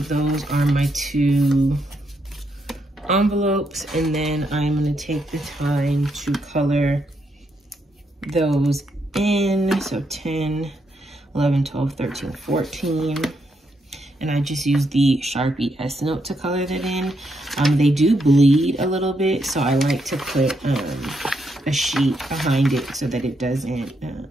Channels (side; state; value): both; normal; correlation 0.79